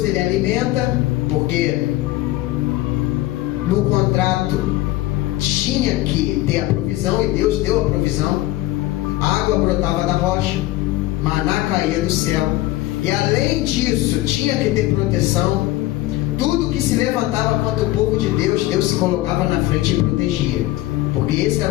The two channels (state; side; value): quieter; right; 17.0 dB